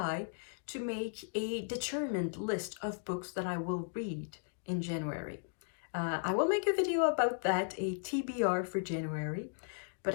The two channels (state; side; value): silent; right; digital silence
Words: to make a determined list of books that I will read in January. I will make a video about that, a TBR for January, but